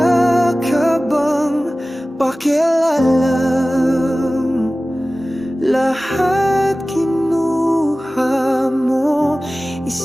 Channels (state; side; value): normal; both; correlation 0.97